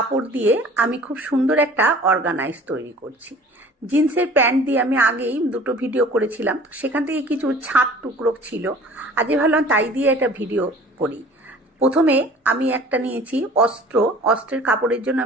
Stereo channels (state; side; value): normal; both; correlation 0.47